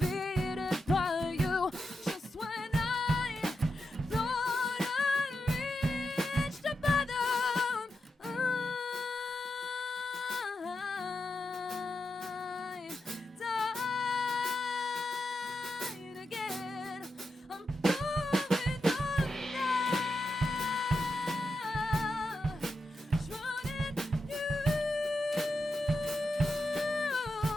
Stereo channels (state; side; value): normal; both; correlation 0.87